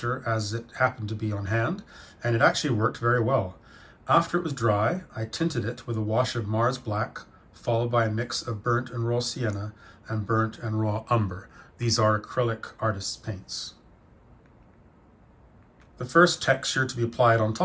as it happened to be on hand, and it actually worked very well. After it was dry, I tinted it with a wash of Mars Black, followed by a mix of burnt and raw sienna and burnt and raw umber. These are acrylic artist's paints. The first texture to be applied on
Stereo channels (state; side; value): identical; both; correlation 1.00